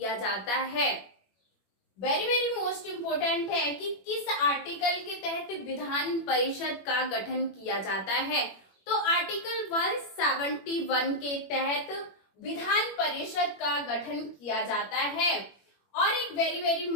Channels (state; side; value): late; right; 21 ms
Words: जाता है। वेरी वेरी मोस्ट इम्पोर्टेंट है कि किस आर्टिकल के तहत विधान परिषद का गठन किया जाता है। तो आर्टिकल 171 के तहत विधान परिषद का गठन किया जाता है। और एक very very